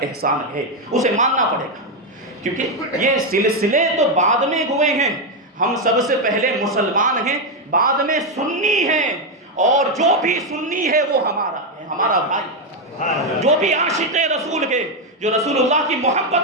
احسان ہے، اسے ماننا پڑے گا، کیونکہ یہ سلسلے تو بعد میں ہوئے ہیں۔ ہم سب سے پہلے مسلمان ہیں، بعد میں سنی ہیں، اور جو بھی سنی ہے وہ ہمارا ہے، ہمارا بھائی۔ جو بھی عاشق رسول ہے، جو رسول اللہ کی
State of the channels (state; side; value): normal; both; correlation 0.05